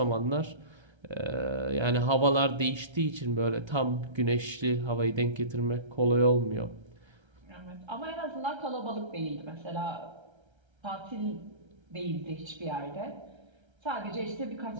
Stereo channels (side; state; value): left; late; 1.3 ms